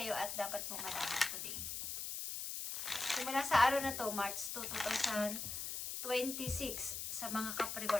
at dapat mong malaman today. Simula sa araw na to, March 2, 2026, sa mga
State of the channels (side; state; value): left; noise; hiss, 4 dB below the sound